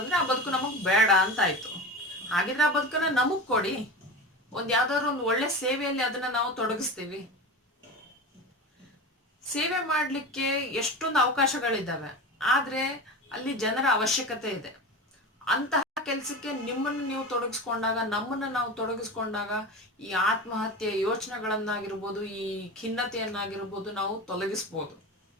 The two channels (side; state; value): both; normal; correlation 0.28